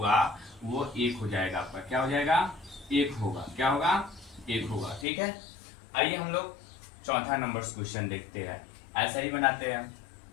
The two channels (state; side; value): drops out; right; at 5.1 s